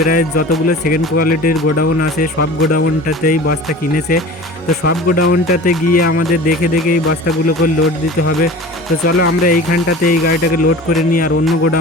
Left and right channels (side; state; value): both; normal; correlation 0.38